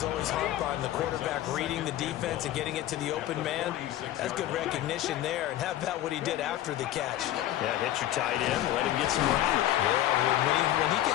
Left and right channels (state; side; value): quieter; right; 13.5 dB